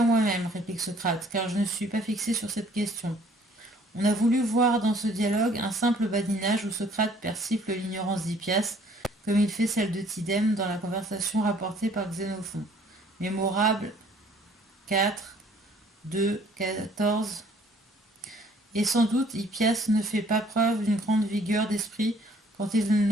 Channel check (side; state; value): both; normal; correlation 0.58